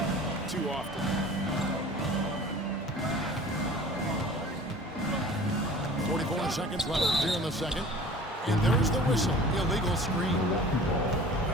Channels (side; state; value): both; normal; correlation 0.44